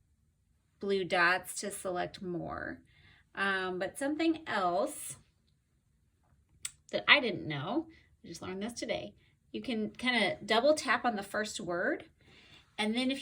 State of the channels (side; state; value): both; identical; correlation 1.00